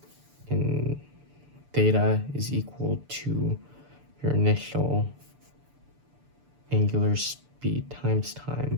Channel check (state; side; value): late; left; 6.9 ms